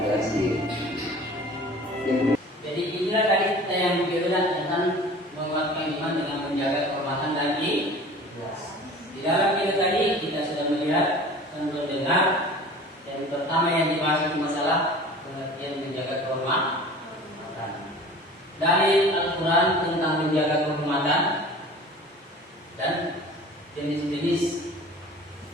sendiri. Jadi inilah tadi kita yang berbicara tentang menguatkan iman dengan menjaga kehormatan dan ikhlas. Di dalam video tadi kita sudah melihat dan mendengar yang pertama yang dibahas itu masalah pengertian menjaga kehormatan. Dari Al-Quran tentang menjaga kehormatan dan jenis-jenis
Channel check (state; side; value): normal; both; correlation 0.42